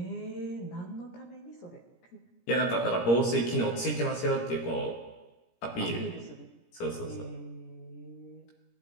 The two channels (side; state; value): right; late; 17 ms